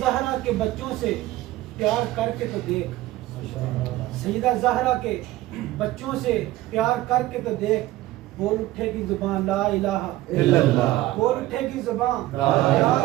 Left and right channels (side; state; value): left; quieter; 16.6 dB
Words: زہرا کے بچوں سے پیار کر کے تو دیکھ، سیدہ زہرا کے بچوں سے پیار کر کے تو دیکھ، بول اٹھے گی زبان لا الہ الا اللہ، بول اٹھے گی زبان لا